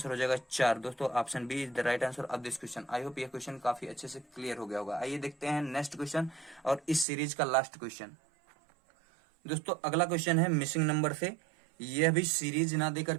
हो जाएगा 4 दोस्तों। Option B is the right answer of this question. I hope ये क्वेश्चन काफी अच्छे से क्लियर हो गया होगा। आइए देखते हैं नेक्स्ट क्वेश्चन और इस सीरीज का लास्ट क्वेश्चन। दोस्तों अगला क्वेश्चन है मिसिंग नंबर से। यह भी सीरीज ना दे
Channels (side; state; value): left; drops out; at 7.1 s